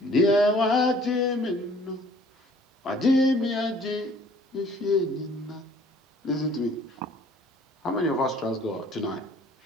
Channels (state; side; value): normal; both; correlation 0.55